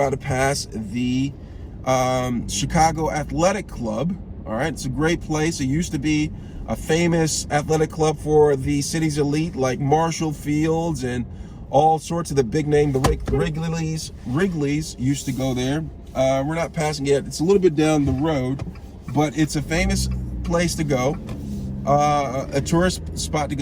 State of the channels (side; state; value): both; identical; correlation 1.00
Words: to pass the Chicago Athletic Club. All right, it's a great place. It used to be a famous athletic club for the city's elite, like Marshall Fields and all sorts of the big name. The Wrigley's used to go there. We're not passing it. It's a little bit down the road, but it's a famous place to go. A tourist spot to